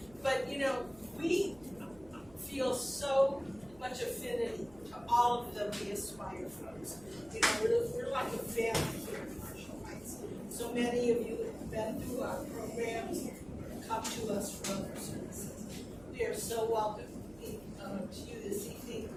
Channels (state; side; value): noise; right; hum, 23 dB below the sound